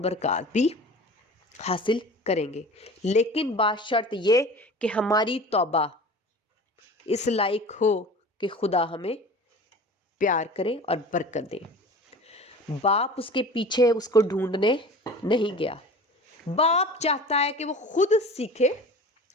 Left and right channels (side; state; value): both; normal; correlation 0.39